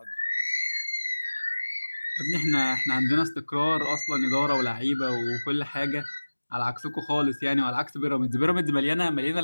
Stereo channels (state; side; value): inverted; both; correlation -1.00